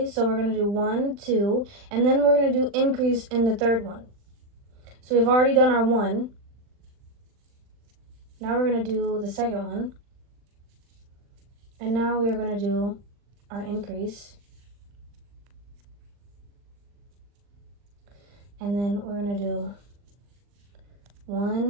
So we're going to do 1, 2, and then we're going to do increase in the third one. So we've already done our 1. Now we're going to do the second one. And now we are going to do our increase. And then we're going to do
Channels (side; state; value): left; late; 40 ms